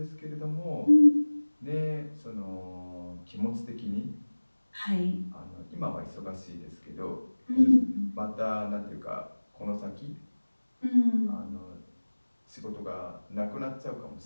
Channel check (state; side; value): inverted; both; correlation -1.00